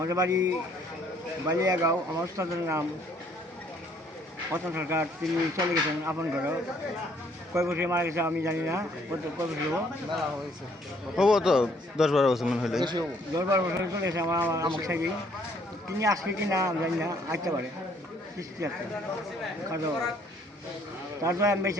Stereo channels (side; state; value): both; normal; correlation 0.64